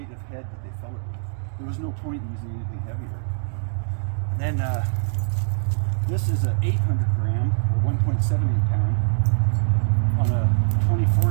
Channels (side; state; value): left; silent; digital silence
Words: of head that they fell it with. There was no point in using anything heavier. And then this is an 800 gram or 1.78 pound on a